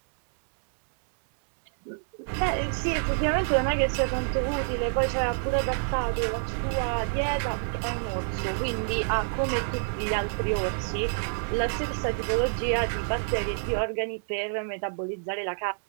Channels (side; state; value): left; silent; digital silence